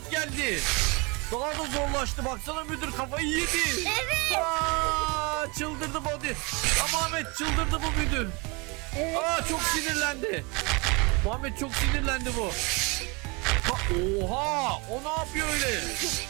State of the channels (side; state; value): left; quieter; 28.7 dB